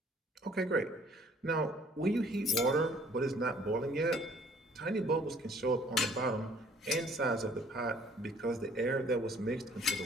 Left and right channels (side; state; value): both; normal; correlation 0.57